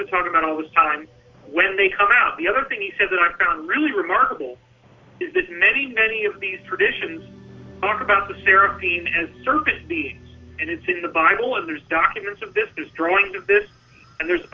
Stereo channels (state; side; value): identical; both; correlation 1.00